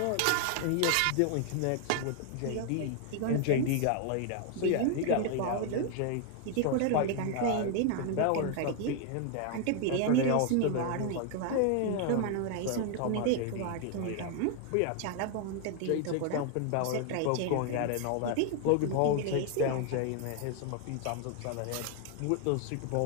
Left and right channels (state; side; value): different; both; correlation 0.00